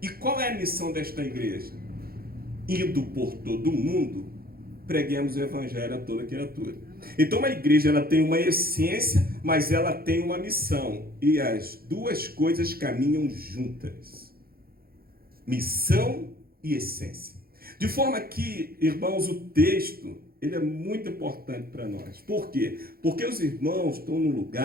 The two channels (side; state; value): left; late; 0.44 ms